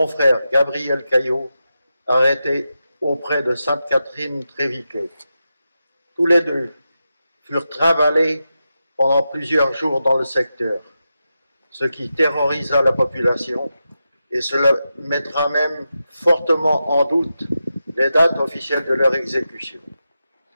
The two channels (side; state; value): both; inverted; correlation -0.89